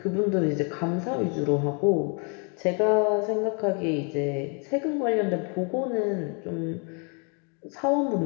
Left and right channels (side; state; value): right; quieter; 37.0 dB